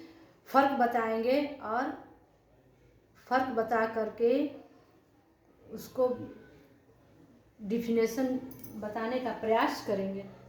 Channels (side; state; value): both; identical; correlation 1.00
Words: फ़र्क बताएंगे और फ़र्क बता करके उसको डिफिनेशन बताने का प्रयास करेंगे।